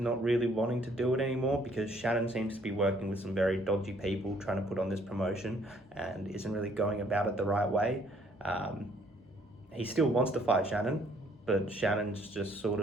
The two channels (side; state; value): both; normal; correlation 0.63